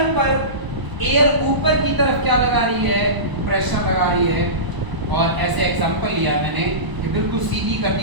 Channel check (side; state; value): left; late; 1.0 ms